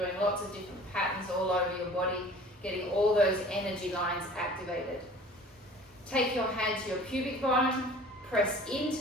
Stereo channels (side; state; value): both; normal; correlation 0.46